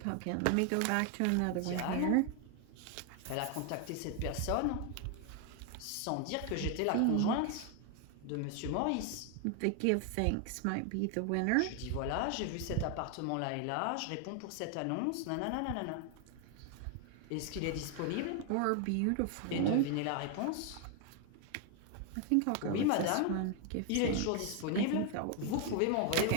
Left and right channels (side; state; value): both; different; correlation 0.01